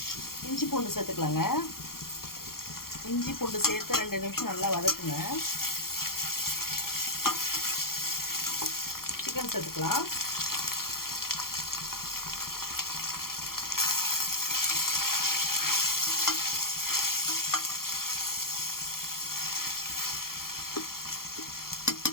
இஞ்சி பூண்டு சேர்த்துக்கலாங்க. இஞ்சி பூண்டு சேர்த்து 2 நிமிஷம் நல்லா வதக்குங்க. சிக்கன் சேர்த்துக்கலாம்.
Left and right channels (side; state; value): right; late; 0.92 ms